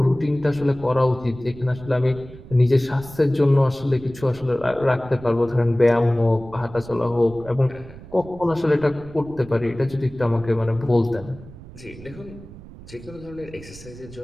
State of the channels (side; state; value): right; noise; rumble, 17 dB below the sound